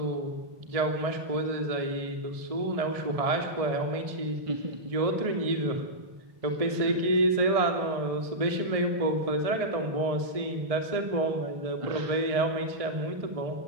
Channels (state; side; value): late; left; 1.6 ms